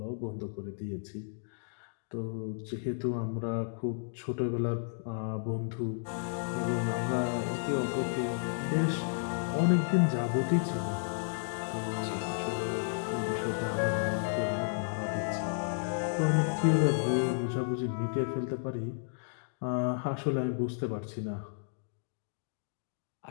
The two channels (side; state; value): right; silent; digital silence